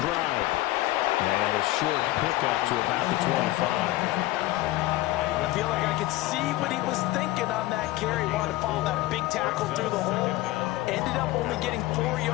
And a short pickup to about the 25. I feel like I could see what he was thinking on that carry. He wanted to follow that big tackle through the hole. Ended up only getting 4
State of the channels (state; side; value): quieter; right; 17.5 dB